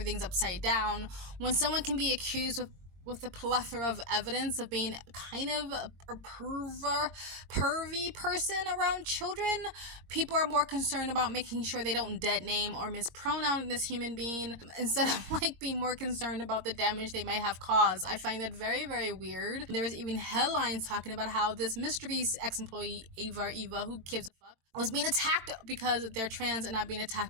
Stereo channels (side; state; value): left; late; 21 ms